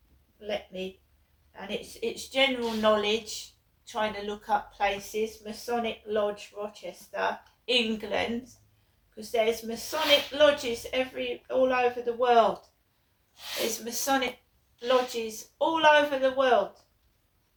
it's general knowledge, trying to look up places. Masonic Lodge, Rochester, England, because there's Masonic lodges all over the world. There's Masonic lodges all over the world.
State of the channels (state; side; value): identical; both; correlation 1.00